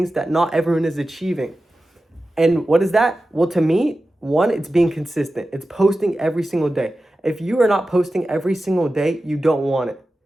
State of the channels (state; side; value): normal; both; correlation 0.94